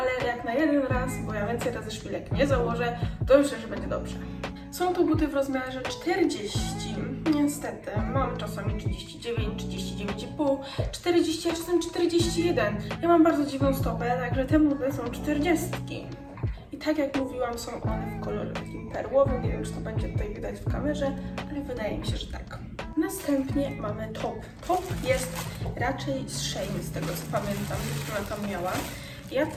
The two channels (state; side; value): identical; both; correlation 1.00